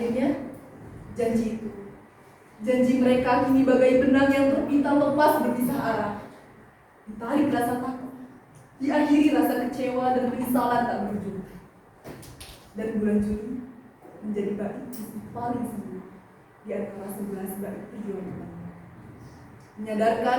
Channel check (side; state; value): both; identical; correlation 1.00